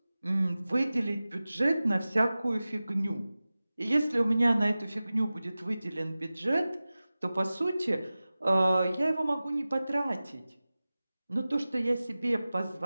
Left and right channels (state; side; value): inverted; both; correlation -0.97